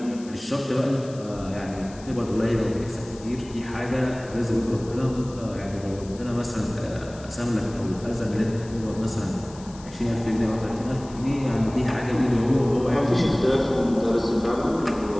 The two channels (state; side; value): noise; left; hiss, 21 dB below the sound